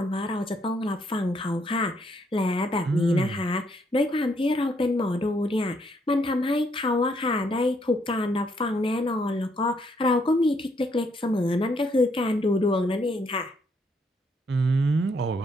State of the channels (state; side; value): normal; both; correlation 0.72